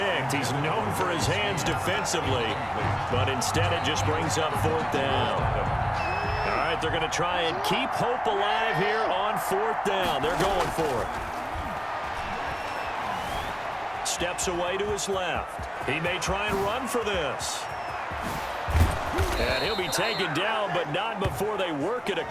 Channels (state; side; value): identical; both; correlation 1.00